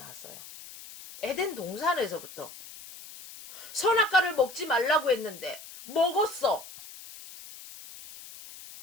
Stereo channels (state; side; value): noise; left; hiss, 16 dB below the sound